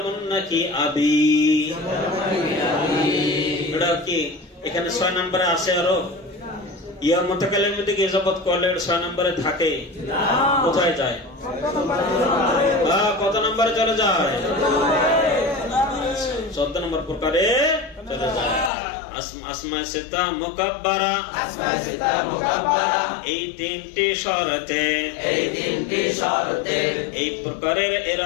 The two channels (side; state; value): right; drops out; at 18.7 s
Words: নাকি আবি। এটা কি এখানে 6 নম্বরে আসে? আরো ইয়া মুতাকাল্লিমের দিকে ইজাফত করলে 6 নম্বরে থাকে। কোথায় যায়? কত নম্বরে চলে যায়? 14 নম্বর প্রকারে চলে যায়। আসমায়ে সিত্তা মুকাব্বারা এই 3টি শর্তে এই প্রকারের